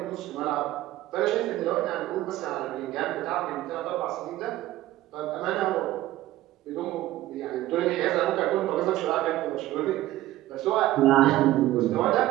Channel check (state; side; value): quieter; left; 15.4 dB